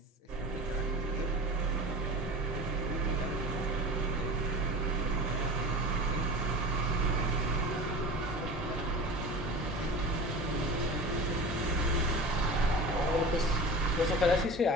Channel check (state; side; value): normal; both; correlation 0.34